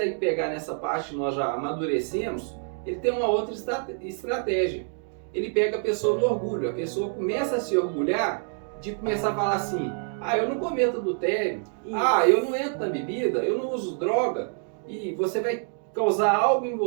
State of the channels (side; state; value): left; silent; 56 dB below the other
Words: pegar nessa parte, nós já amadurecemos, ele tem uma outra estratégia. Ele pega a pessoa no orgulho. A pessoa começa a se orgulhar de começar a falar assim: eu não cometo adultério, eu não entro na bebida, eu não uso droga. E você vai causar algo em